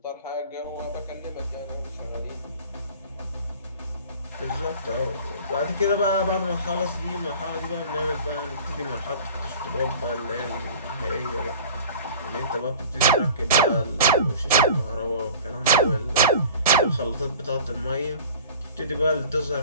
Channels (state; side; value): inverted; both; correlation -0.42